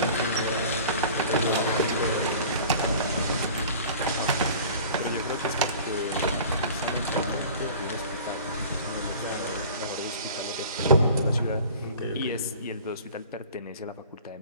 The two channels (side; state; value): both; inverted; correlation -0.43